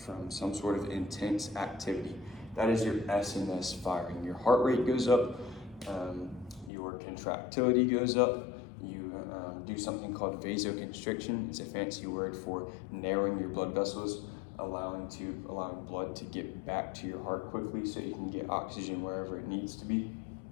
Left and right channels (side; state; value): right; drops out; at 6.7 s